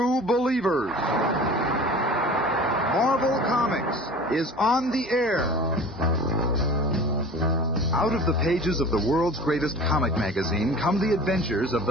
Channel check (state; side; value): normal; both; correlation 0.40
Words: believers. Marvel Comics is on the air. Out of the pages of the world's greatest comic magazine come the adventures of